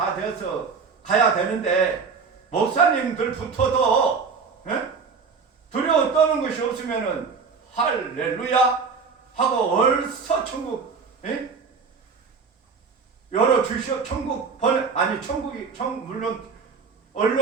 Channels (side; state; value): left; quieter; 5.2 dB